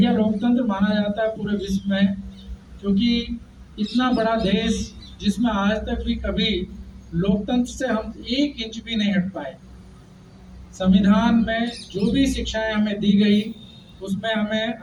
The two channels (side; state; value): both; identical; correlation 1.00